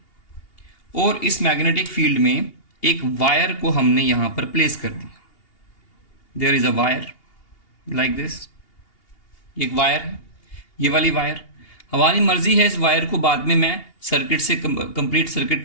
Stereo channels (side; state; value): right; late; 2.8 ms